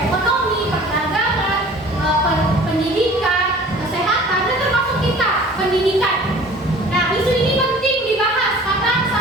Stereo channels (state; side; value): normal; both; correlation 0.47